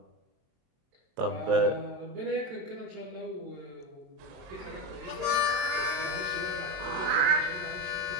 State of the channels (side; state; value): left; late; 22 ms